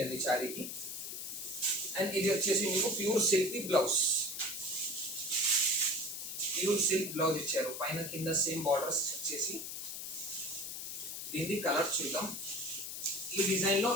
అండి సారీకి. అండ్ ఇది వచ్చేసి మీకు pure silk blouse, pure silk blouse ఇచ్చారు, పైన కింద సేమ్ బార్డర్స్ వచ్చేసి. దీని కలర్ చూద్దాం. ఈ డిజైన్ లో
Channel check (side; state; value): left; noise; hiss, 6 dB below the sound